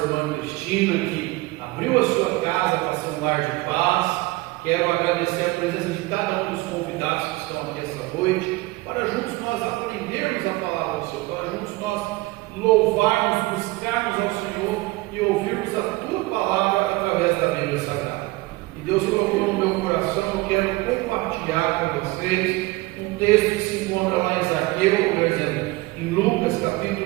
Cristina, que abriu a sua casa para ser um lar de paz. Quero agradecer a presença de cada um dos convidados que estão aqui essa noite, para juntos nós aprendermos a palavra do Senhor, para juntos nós louvarmos, buscarmos ao Senhor e ouvirmos a Tua palavra através da Bíblia Sagrada. E Deus colocou no meu coração, eu quero compartilhar com vocês um texto que se encontra lá em Zaqueu, por exemplo, em Lucas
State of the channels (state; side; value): quieter; left; 21.5 dB